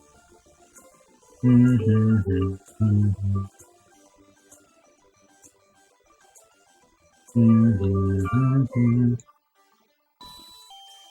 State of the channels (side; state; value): both; identical; correlation 1.00